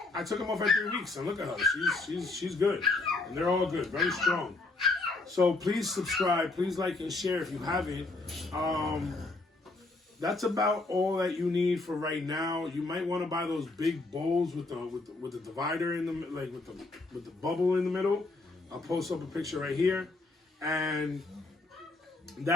I took them off at 3 weeks. And look at her. She's good. And they're all good. Very strong. So please subscribe. Please like and share if you haven't. That's about all that you need for right now. You might want to buy those big bowls with the divider in them, like with the bubble in the middle. I'll post up a picture right here, and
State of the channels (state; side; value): quieter; right; 3.3 dB